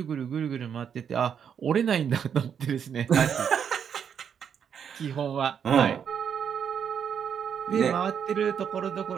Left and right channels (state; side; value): quieter; left; 7.8 dB